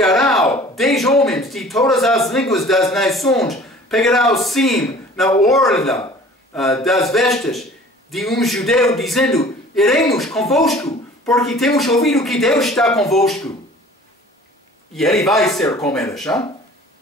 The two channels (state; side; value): normal; both; correlation 0.47